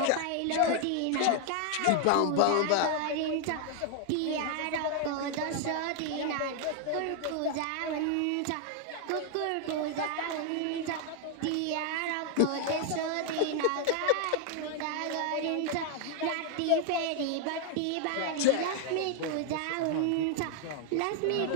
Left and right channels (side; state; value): both; different; correlation 0.00